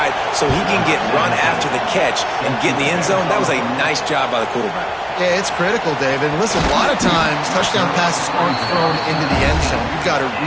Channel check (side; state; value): both; identical; correlation 1.00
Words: so he can get run after the catch and get in the end zone, that was a nice job by the quarterback. Yeah, it's critical, David. Listen, a lot of times touchdown passes aren't thrown into the end zone. You've got to